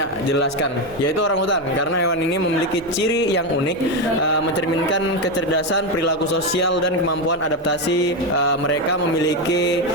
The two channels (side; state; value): right; noise; hum, 25 dB below the sound